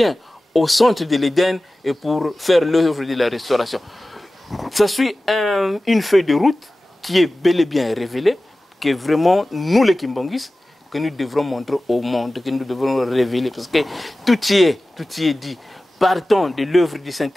au centre de l'Éden et pour faire l'œuvre de la restauration. Ça suit une feuille de route qui est bel et bien révélée, que vraiment, nous les Kimbangis, que nous devrons montrer au monde, que nous devrons révéler, parce que tout y est dit. Partons de l'œuvre du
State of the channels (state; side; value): normal; both; correlation 0.96